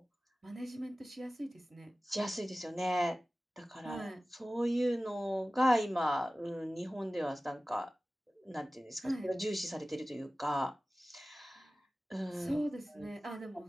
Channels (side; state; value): both; normal; correlation 0.96